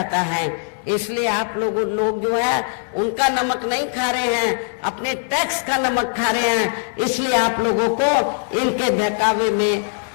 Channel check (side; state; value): right; silent; 65 dB below the other